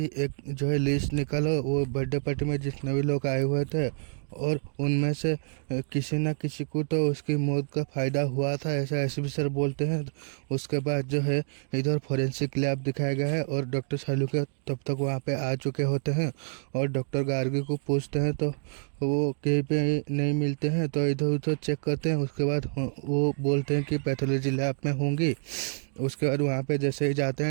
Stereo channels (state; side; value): silent; left; 59 dB below the other